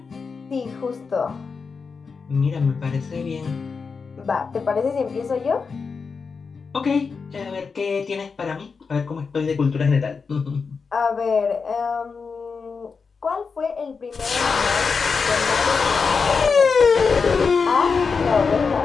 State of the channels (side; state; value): right; quieter; 5.1 dB